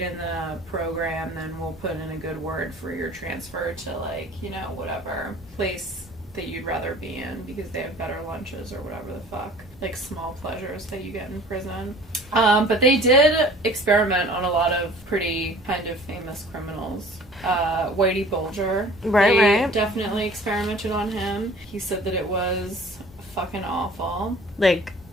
the program, then we'll put in a good word for your transfer to, like, whatever place that you'd rather be in, because they have better lunches or whatever the fuck. Like, small pleasures that you get in prison. But they did experiment on a lot of pretty kind of famous criminals. Whitey Bulger. Right. Definitely experimented on him. He said that it was fucking awful. Like,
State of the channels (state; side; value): normal; both; correlation 0.48